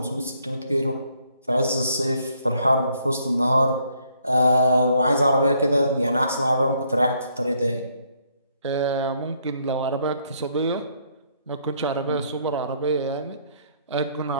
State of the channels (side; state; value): both; inverted; correlation -0.69